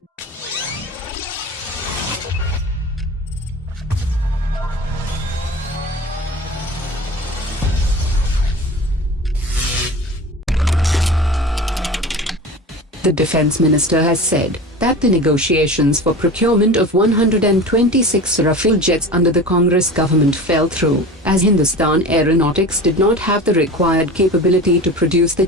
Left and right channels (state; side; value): normal; both; correlation 0.34